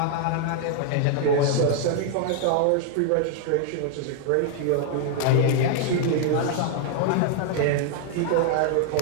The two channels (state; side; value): different; both; correlation 0.00